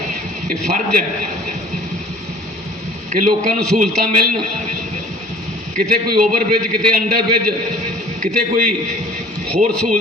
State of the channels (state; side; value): normal; both; correlation 0.48